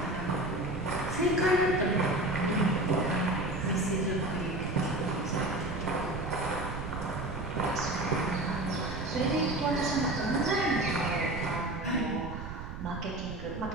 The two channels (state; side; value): noise; right; rumble, 8 dB below the sound